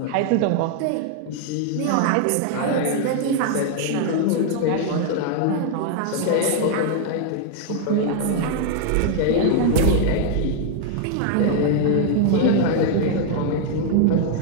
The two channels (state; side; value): different; both; correlation 0.00